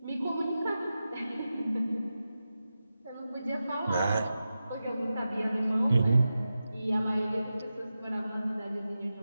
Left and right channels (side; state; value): both; inverted; correlation -0.92